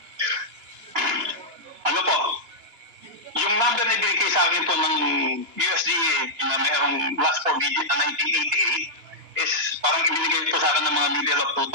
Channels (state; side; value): late; left; 4.1 ms